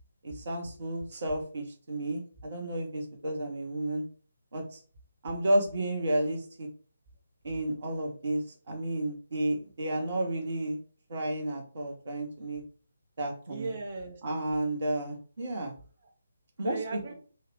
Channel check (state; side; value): inverted; both; correlation -0.88